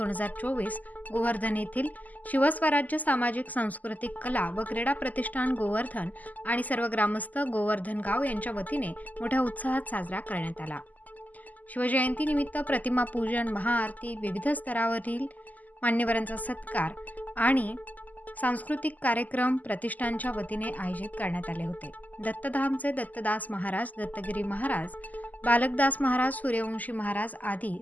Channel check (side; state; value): right; late; 0.079 ms